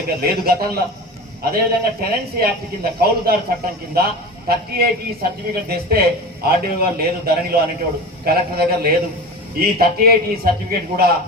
లేదు గతంలో. అదేవిధంగా టెనెన్సీ యాక్ట్ కింద కౌలుదారు చట్టం కింద 38E సర్టిఫికేట్ తెస్తే ఆర్డీఓ గారు లేదు ధరణిలో అనేటోడు, కలెక్టర్ దగ్గర లేదు. ఈ 38E సర్టిఫికేట్ కూడా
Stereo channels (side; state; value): both; normal; correlation 0.30